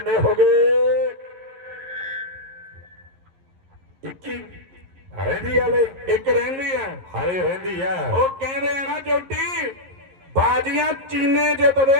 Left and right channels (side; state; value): left; late; 11 ms